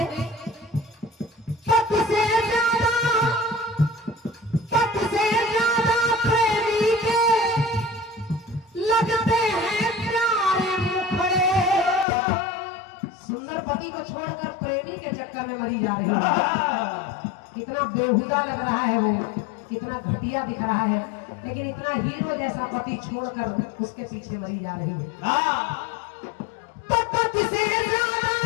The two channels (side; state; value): right; drops out; at 12.1 s